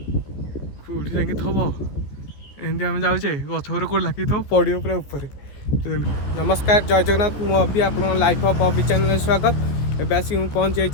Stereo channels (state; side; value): late; right; 14 ms